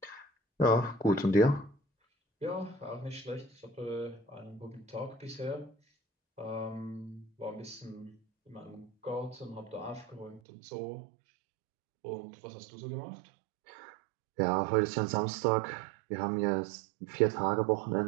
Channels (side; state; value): left; drops out; at 10.4 s